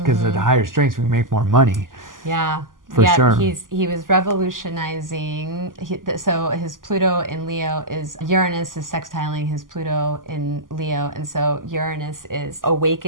at the higher strengths, we make more money. Yeah. For sure. He was revolutionizing. So his Pluto in Leo Uranus is sextiling his Pluto in Leo. And so Uranus is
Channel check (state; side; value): late; left; 0.90 ms